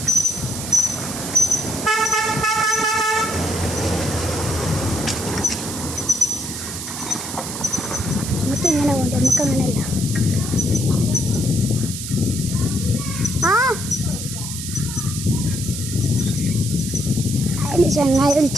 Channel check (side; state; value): right; noise; hiss, 7 dB below the sound